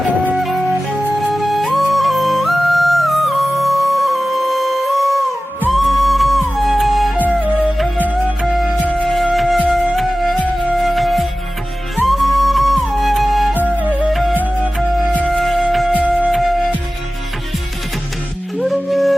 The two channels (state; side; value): normal; both; correlation 0.96